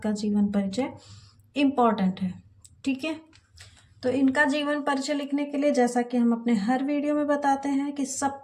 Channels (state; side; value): identical; both; correlation 1.00